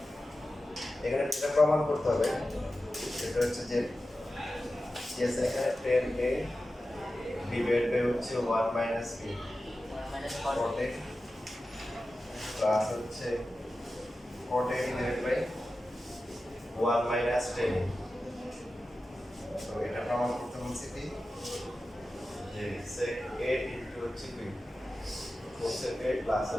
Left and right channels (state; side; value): normal; both; correlation 0.93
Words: এখানে যেটা প্রমাণ করতে হবে সেটা হচ্ছে যে এখানে 10a ডিভাইড বাই হচ্ছে 1 মাইনাস b cot প্লাস হচ্ছে cot a divide by 1 minus 10a। তো এটা প্রমাণ করতে বলছি কি যে sec a ইনটু হচ্ছে b cosec a প্লাস